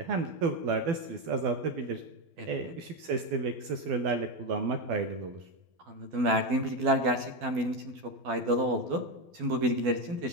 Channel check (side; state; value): left; late; 12 ms